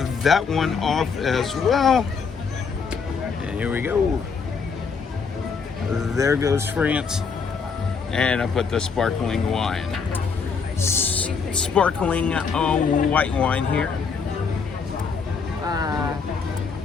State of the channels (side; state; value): right; quieter; 5.5 dB